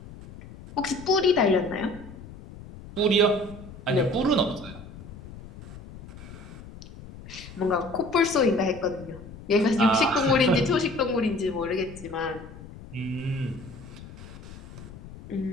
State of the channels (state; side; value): noise; left; rumble, 16 dB below the sound